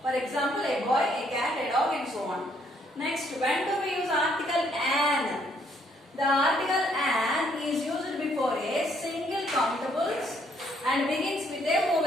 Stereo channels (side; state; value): both; normal; correlation 0.68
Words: For example, a boy, a cat, a dog, and so on. Next, when do we use article an? The article an is used before a single countables and begins with a